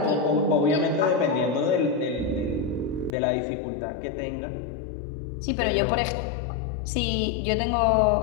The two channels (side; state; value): right; drops out; at 3.1 s